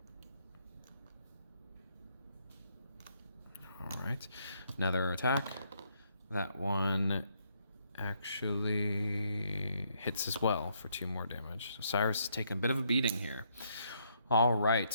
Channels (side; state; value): both; inverted; correlation -0.73